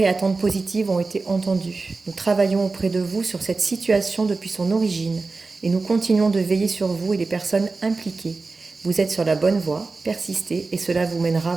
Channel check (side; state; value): left; quieter; 3.9 dB